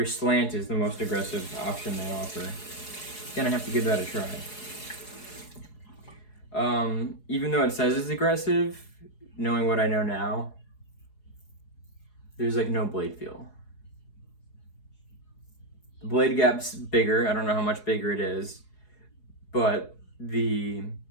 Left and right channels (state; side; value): late; right; 4.8 ms